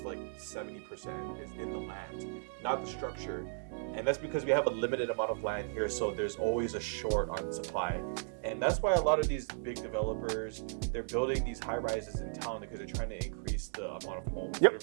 like 70% is in the land, not the structure. And that's because we have a limited amount of land here, so there's always a short on supply. And that's why a lot of these big developers, they're building these high rises in town because they're trying to increase the amount of homes that are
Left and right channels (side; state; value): left; silent; digital silence